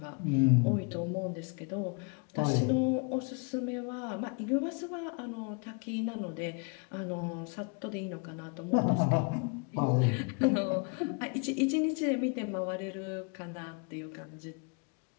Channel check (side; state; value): right; quieter; 34.9 dB